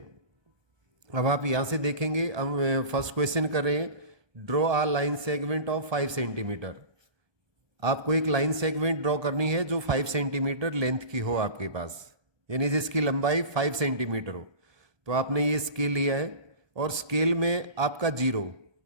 अब आप यहाँ से देखेंगे, हम फर्स्ट क्वेश्चन कर रहे हैं, draw a line segment of 5 centimetre. आपको एक लाइन सेगमेंट ड्रॉ करनी है जो 5 सेंटीमीटर लेंथ की हो आपके पास, यानी जिसकी लंबाई 5 सेंटीमीटर हो। तो आपने ये स्केल लिया है और स्केल में आपका जीरो,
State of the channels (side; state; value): left; late; 1.2 ms